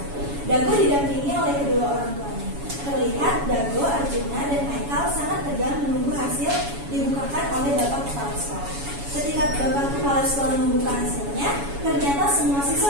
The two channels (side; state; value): left; late; 7.1 ms